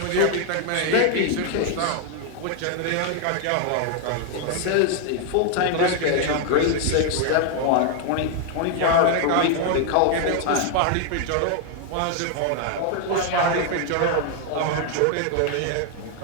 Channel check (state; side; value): different; both; correlation 0.00